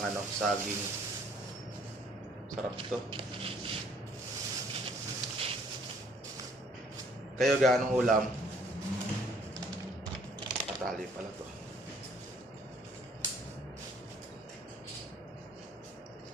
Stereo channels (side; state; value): both; normal; correlation 0.61